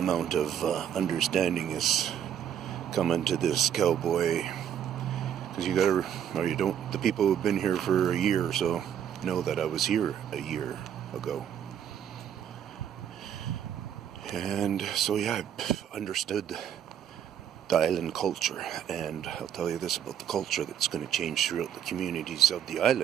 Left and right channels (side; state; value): left; quieter; 9.3 dB